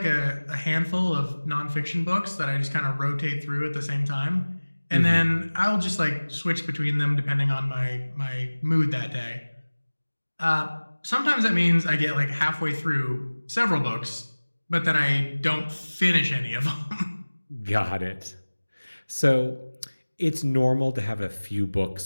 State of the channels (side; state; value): both; inverted; correlation -1.00